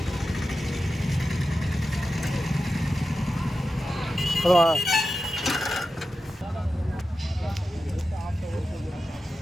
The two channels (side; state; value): both; normal; correlation 0.92